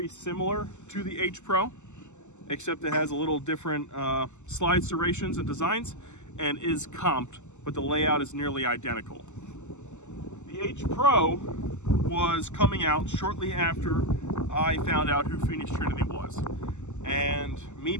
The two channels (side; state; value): right; late; 0.84 ms